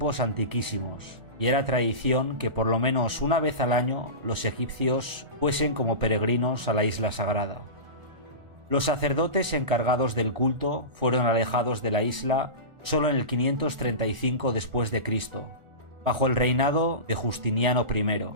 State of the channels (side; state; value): left; late; 1.4 ms